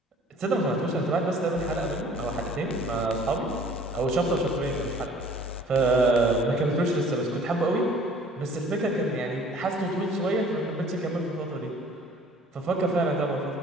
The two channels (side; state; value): both; normal; correlation 0.52